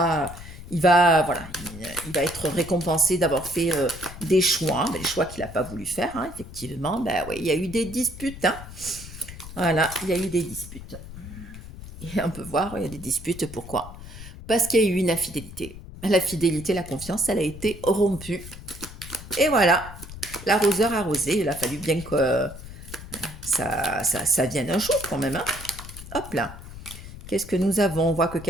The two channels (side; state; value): left; noise; rumble, 14 dB below the sound